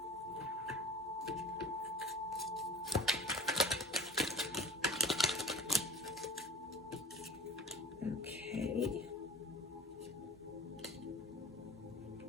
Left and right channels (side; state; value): both; normal; correlation 0.40